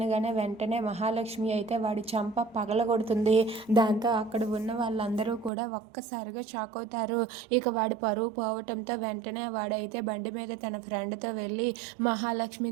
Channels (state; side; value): drops out; left; at 5.5 s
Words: వెంటనే మహాలక్ష్మి అయితే వాడి చంప పగలగొడుతుంది. దాంతో అక్కడ ఉన్న వాళ్ళందరూ కూడా ఒక్కసారిగా షాక్ అవుతారు. ఇక వాడి పరువు పోవటంతో వెంటనే వాడైతే బండి మీద తన ఫ్రెండ్తో వెళ్ళి మహాలక్ష్మి